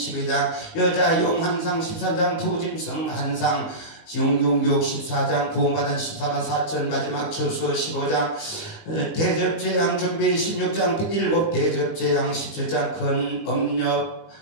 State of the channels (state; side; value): late; right; 19 ms